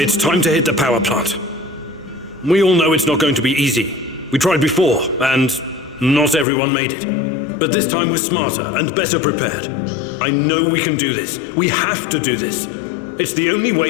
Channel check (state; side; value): drops out; right; at 6.5 s